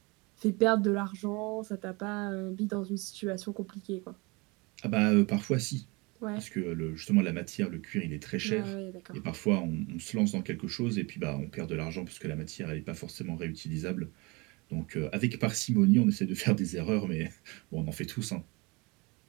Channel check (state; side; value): quieter; left; 26.7 dB